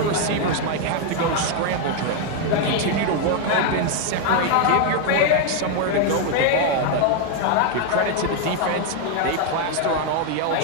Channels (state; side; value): different; both; correlation 0.01